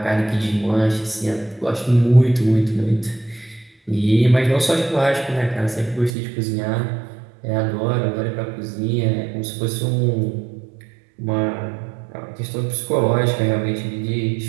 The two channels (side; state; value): left; drops out; at 6.1 s